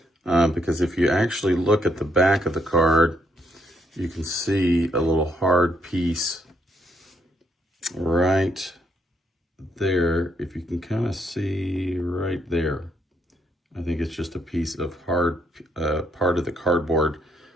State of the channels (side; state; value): both; normal; correlation 0.74